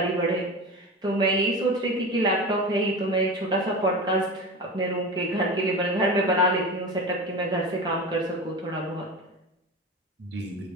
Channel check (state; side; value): normal; both; correlation 0.28